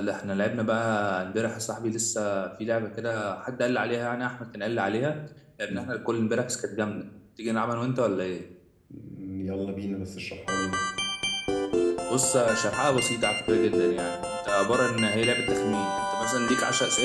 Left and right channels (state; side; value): identical; both; correlation 1.00